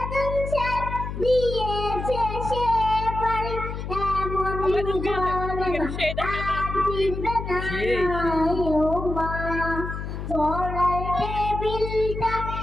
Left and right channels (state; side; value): noise; left; hum, 6 dB below the sound